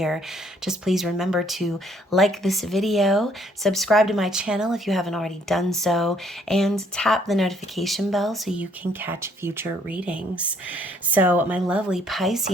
Just please remember to like this video, subscribe to my channel if you haven't already done so, and tap the notification bell so you can catch future readings. So my lovely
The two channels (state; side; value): normal; both; correlation 0.65